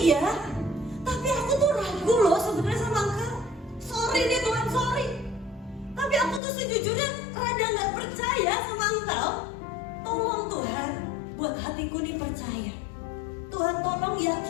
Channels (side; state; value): right; drops out; at 6.4 s